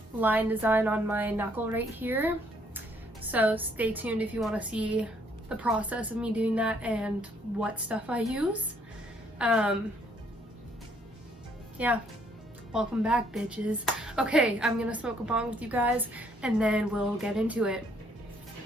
line design on my knuckle right here. So stay tuned if you want to see the process of me doing that and what stuff I use. Yeah, welcome back, bitches. Okay, I'm gonna smoke a bong with you guys and then we'll get into it.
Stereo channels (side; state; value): both; normal; correlation 0.66